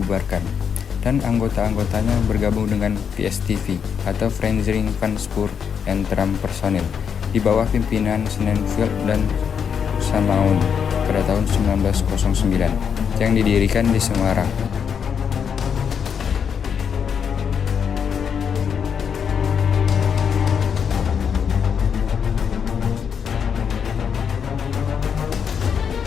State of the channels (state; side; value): quieter; right; 7.2 dB